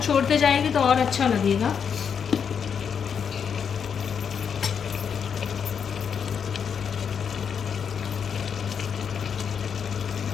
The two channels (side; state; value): right; quieter; 7.1 dB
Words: छोड़ते जाएगी तो और अच्छा लगेगा।